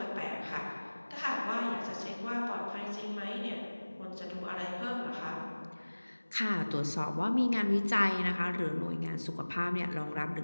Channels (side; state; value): both; inverted; correlation -1.00